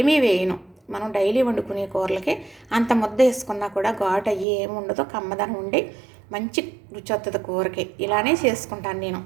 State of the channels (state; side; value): drops out; left; at 4.5 s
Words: వేయను. మనం డైలీ వండుకునే కూరలకి అంత ముద్ద వేసుకున్నా కూడా ఘాటు అయ్యి ఏమి ఉండదో, కమ్మదనం ఉండి మంచి రుచి వస్తుంది కూరకి. ఇలానే చేసుకుంటాను నేను.